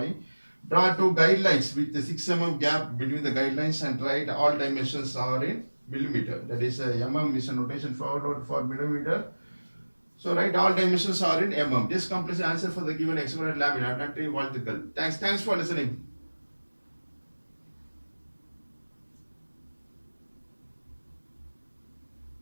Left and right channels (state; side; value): inverted; both; correlation -1.00